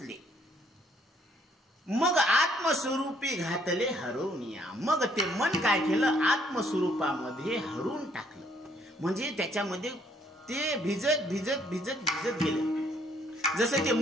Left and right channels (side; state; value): both; normal; correlation 0.66